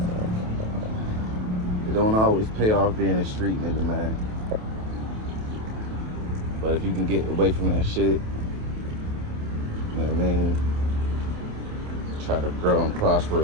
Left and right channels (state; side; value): late; left; 28 ms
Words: It don't always pay off being a street nigga, man. But if you can get away from that shit, you know what I mean? Try to grow and prosper